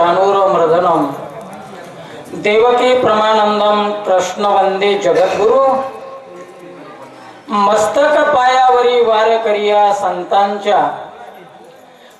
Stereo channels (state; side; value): identical; both; correlation 1.00